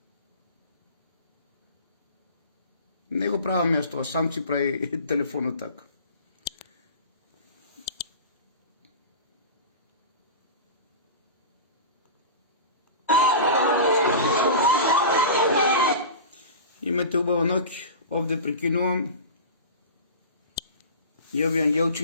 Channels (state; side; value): inverted; both; correlation -0.32